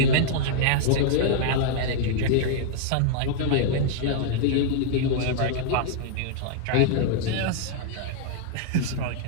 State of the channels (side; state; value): both; different; correlation -0.01